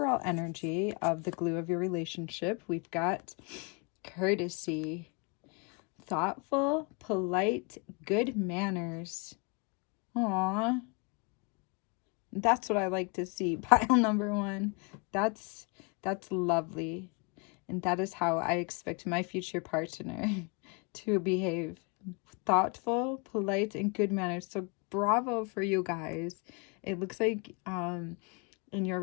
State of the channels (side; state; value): right; quieter; 33.0 dB